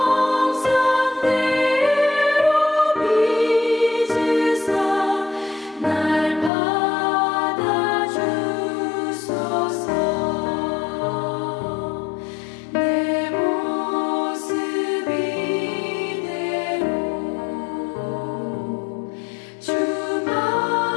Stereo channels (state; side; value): drops out; right; at 6.5 s